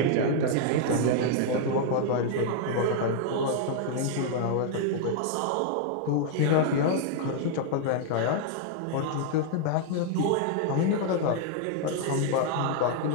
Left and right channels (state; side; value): different; both; correlation 0.00